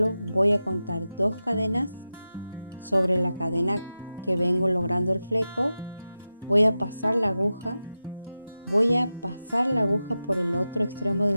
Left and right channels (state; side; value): inverted; both; correlation -0.93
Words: voy a contar 2 cadenas sobre la cadena que vengo logrando el fleco. Voy a pasar la aguja por el otro extremo